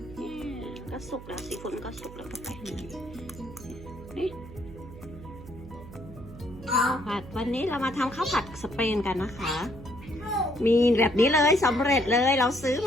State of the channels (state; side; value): noise; right; hum, 15 dB below the sound